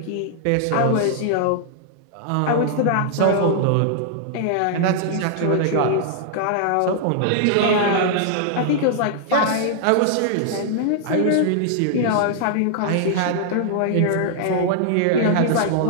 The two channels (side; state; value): both; different; correlation -0.01